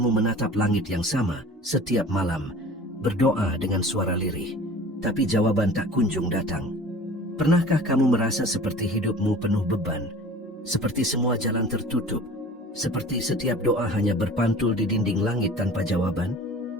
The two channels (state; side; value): normal; both; correlation 0.43